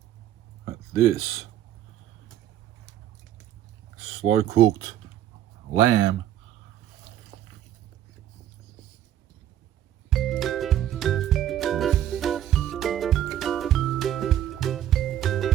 at this slow cooked lamb.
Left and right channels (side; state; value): left; quieter; 11.5 dB